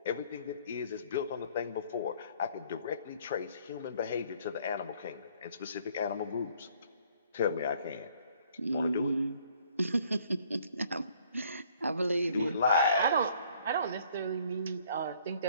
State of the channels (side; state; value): both; inverted; correlation -0.61